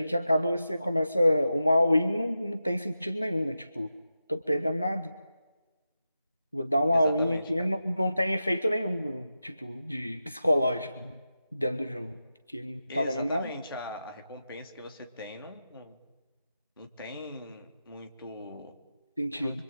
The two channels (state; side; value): inverted; both; correlation -0.90